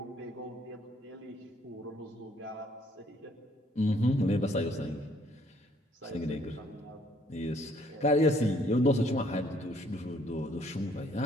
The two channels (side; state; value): both; normal; correlation 0.64